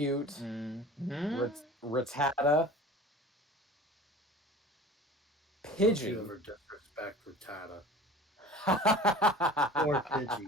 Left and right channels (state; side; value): normal; both; correlation 0.41